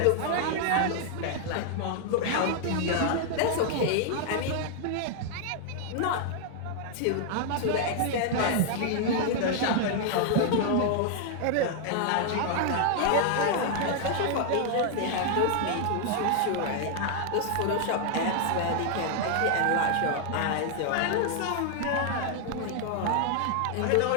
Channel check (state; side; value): different; both; correlation 0.00